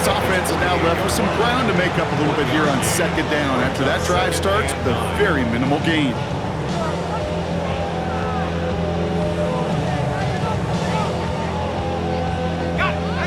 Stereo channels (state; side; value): identical; both; correlation 1.00